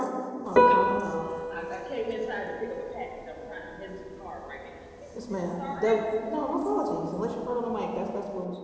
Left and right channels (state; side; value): identical; both; correlation 1.00